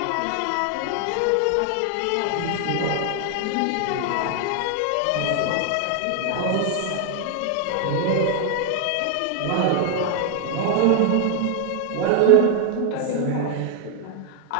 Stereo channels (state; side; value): different; both; correlation 0.00